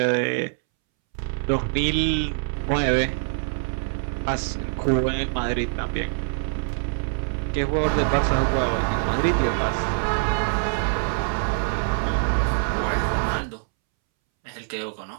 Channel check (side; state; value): left; silent; 62 dB below the other